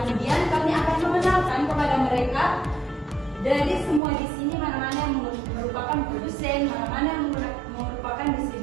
kami akan mengenalkan kepada mereka dari semua di sini mana-mana yang merupakan produsen, mana-mana yang merupakan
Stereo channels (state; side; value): drops out; left; at 4.0 s